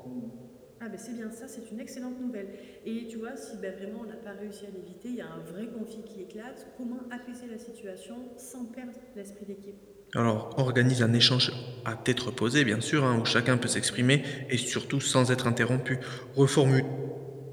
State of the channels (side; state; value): both; identical; correlation 1.00